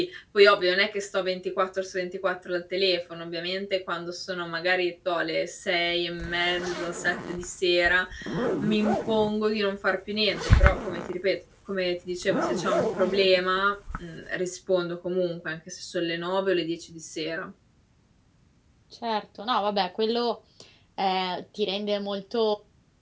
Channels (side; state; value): both; identical; correlation 1.00